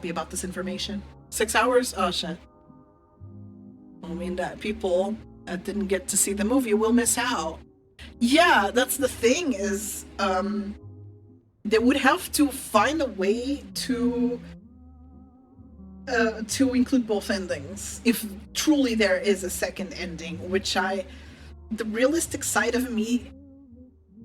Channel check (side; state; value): both; identical; correlation 1.00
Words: about this information. 6 hours? Oh shit. I mean that people that didn't get to see the movie will miss out. Yeah, that's the thing is, they would have to find a way to include both endings, if truly there is a second ending, which the realistic side of me